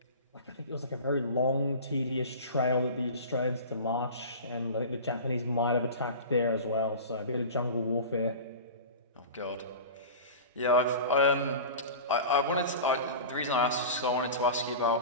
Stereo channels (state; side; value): inverted; both; correlation -0.33